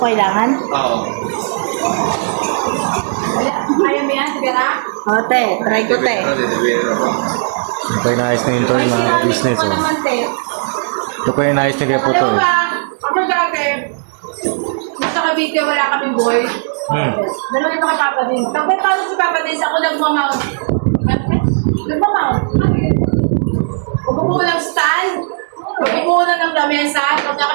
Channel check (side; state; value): left; silent; digital silence